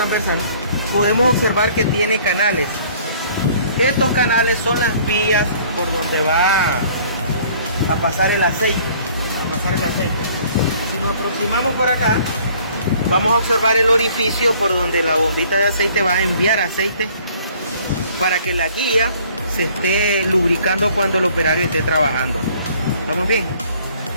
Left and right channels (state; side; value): inverted; both; correlation -0.56